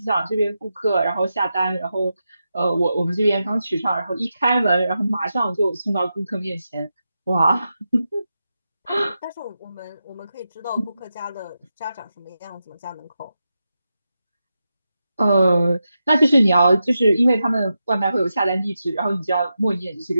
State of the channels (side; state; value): both; inverted; correlation -0.89